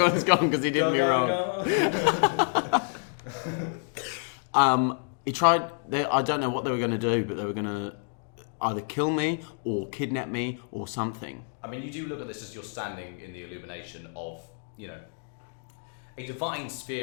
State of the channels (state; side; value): silent; right; 59 dB below the other